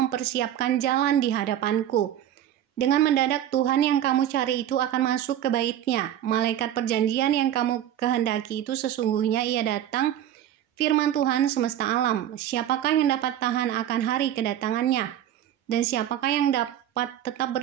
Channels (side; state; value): left; quieter; 11.2 dB